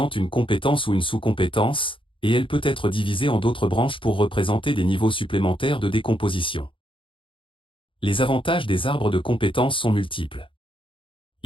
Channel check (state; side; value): late; right; 0.25 ms